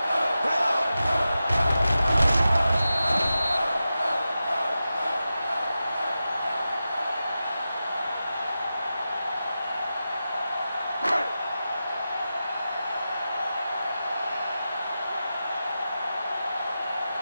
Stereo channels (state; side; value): inverted; both; correlation -0.92